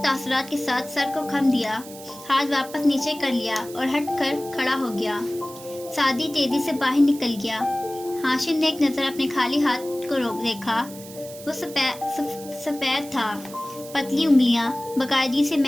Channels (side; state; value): right; noise; hiss, 16 dB below the sound